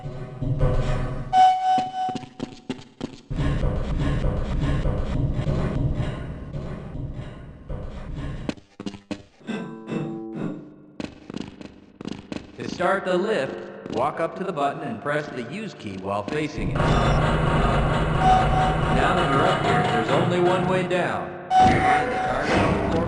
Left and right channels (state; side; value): identical; both; correlation 1.00